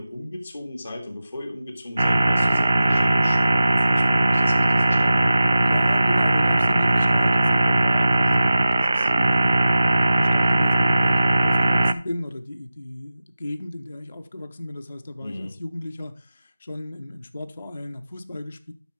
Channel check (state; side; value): inverted; both; correlation -0.94